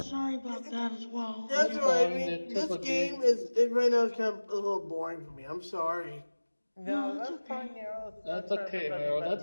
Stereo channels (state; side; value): inverted; both; correlation -1.00